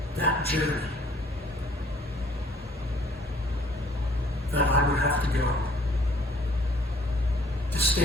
that journey that I would have to go to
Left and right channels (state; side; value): normal; both; correlation 0.59